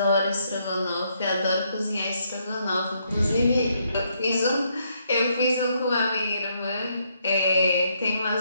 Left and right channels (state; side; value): inverted; both; correlation -0.74